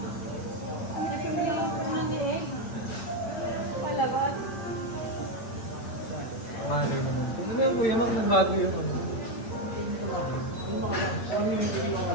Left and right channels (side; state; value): right; late; 8.8 ms